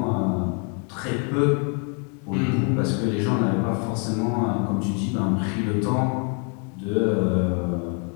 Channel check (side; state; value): right; quieter; 39.0 dB